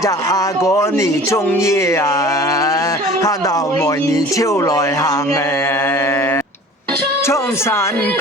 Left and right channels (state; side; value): normal; both; correlation 0.44